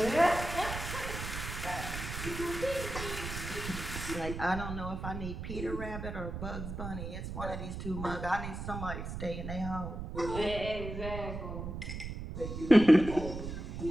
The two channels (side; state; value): right; noise; rumble, 6 dB below the sound